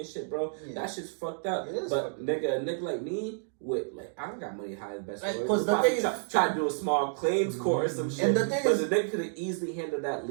shit, bro. Yeah. That shit's fucked up. It is But fucked up. a nigga like me, with I don't got money to hire the best Like, lawyers. 'cause the We'll thing probably is- try to do a small claims court or some shit. And the thing but is- the nigga could have easily handled that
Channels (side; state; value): left; silent; digital silence